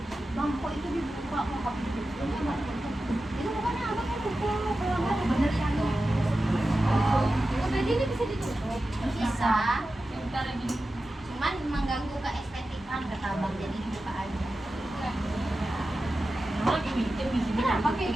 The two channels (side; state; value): both; normal; correlation 0.93